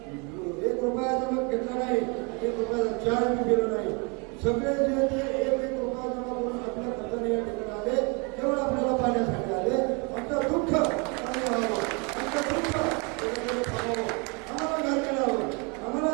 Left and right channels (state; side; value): quieter; left; 32.0 dB